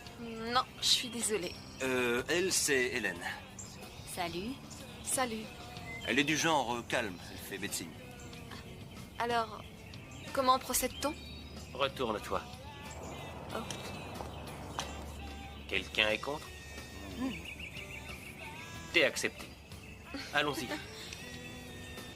Non, je suis désolée. Elle, c'est Hélène. Salut. Salut. Elle est du genre calme. Elle fait médecine. Alors, comment procède-t-on? Retourne-toi. Oh. Quelqu'un est contre? T'es accepté. Allons-y.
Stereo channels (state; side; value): identical; both; correlation 1.00